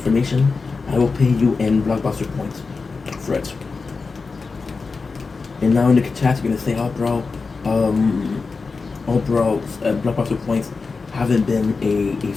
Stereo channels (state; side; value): quieter; right; 4.4 dB